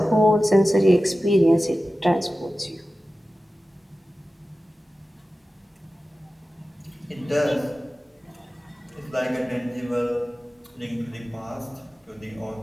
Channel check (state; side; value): normal; both; correlation 0.95